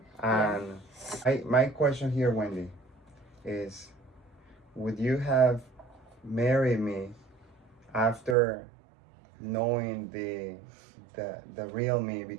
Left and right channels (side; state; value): left; drops out; at 8.3 s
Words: And my question here, Wendy, is would you have married me after knowing the real me?